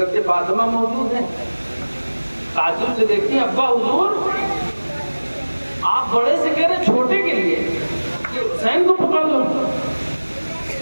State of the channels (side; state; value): both; inverted; correlation -1.00